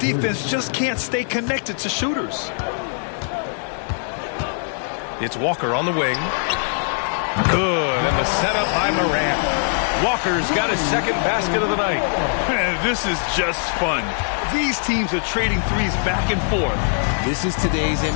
just can't stay connected to shooters. It's Walker on the wing. Good. And the setup by Moran. Walker's got his second basket of the night. Man, this is just fun. These teams are trading threes back and forth. This is today's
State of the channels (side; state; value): right; silent; digital silence